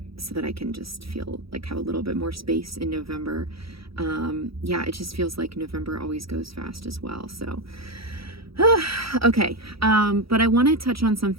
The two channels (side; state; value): left; late; 0.75 ms